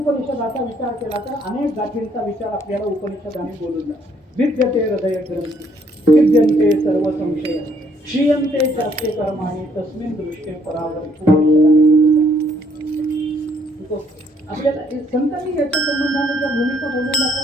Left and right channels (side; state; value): both; normal; correlation 0.67